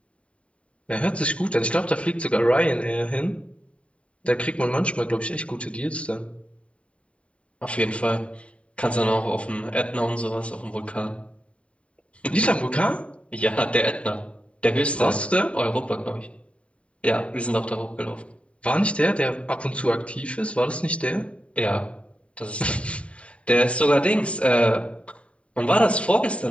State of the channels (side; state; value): right; late; 0.063 ms